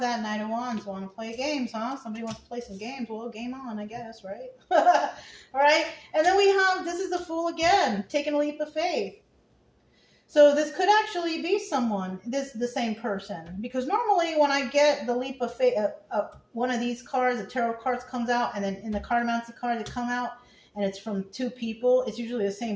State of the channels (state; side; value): identical; both; correlation 1.00